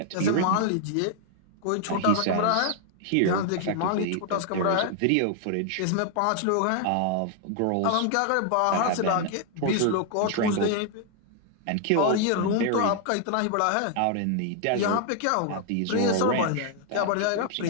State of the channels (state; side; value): different; both; correlation 0.00